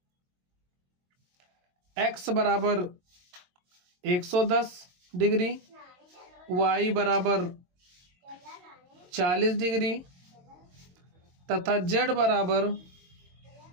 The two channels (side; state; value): left; late; 22 ms